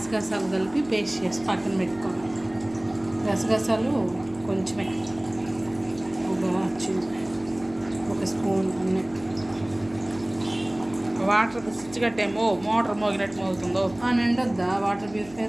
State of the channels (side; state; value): right; noise; hum, 21 dB below the sound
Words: కలిపి పేస్ట్ చేసి పక్కన పెట్టుకోవాలి. గసగసాలు కొంచెమే, ఒక స్పూన్ అన్నీ. వాటర్ స్విచ్ కట్టేమో మోటార్ మోగినట్టు మోగుతుందో. నిండొద్దా వాటర్